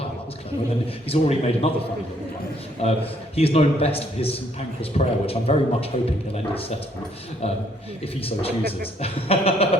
that was clever, and then he's already made another funny little one. He is known best for his St Pancras prayer, which I'm very much hoping he'll end his set on, if he so chooses,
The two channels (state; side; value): normal; both; correlation 0.67